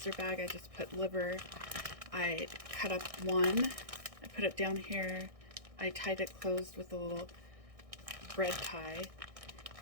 bag, I just put liver. I cut up one. I put it down here. I tied it closed with a little bread tie.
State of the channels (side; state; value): left; late; 1.6 ms